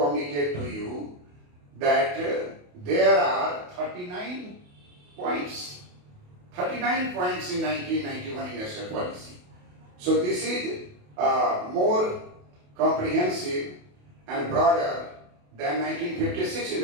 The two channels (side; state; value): left; late; 28 ms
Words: to you that there are 39 points. 39 points in 1991 industrial policy. So this is more comprehensive and broader than 1956